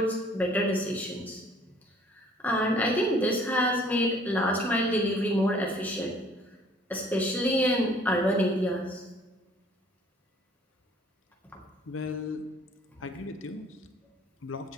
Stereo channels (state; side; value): normal; both; correlation 0.57